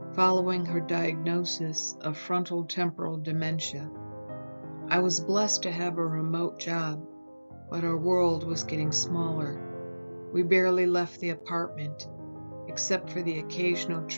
following her diagnosis of frontal temporal dementia. I was blessed to have a remote job, but our world was getting smaller. We barely left the apartment, except for the occasional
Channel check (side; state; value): both; inverted; correlation -1.00